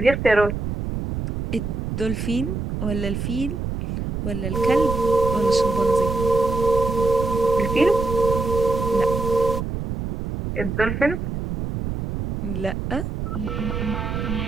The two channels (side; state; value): right; noise; rumble, 4 dB below the sound